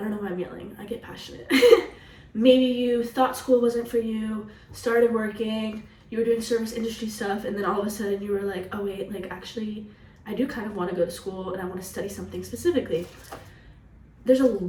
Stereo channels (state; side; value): identical; both; correlation 1.00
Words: don't know why I'm yelling, I get passionate. Maybe you thought school wasn't for you, started working, you were doing service industry stuff, and then all of a sudden you were like, oh wait, actually, I do kind of want to go to school and I want to study something specifically. There's a